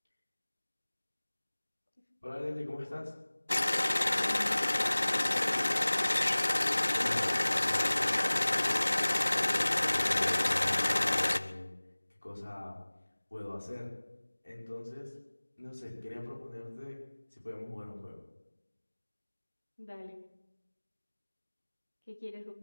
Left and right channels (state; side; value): inverted; both; correlation -1.00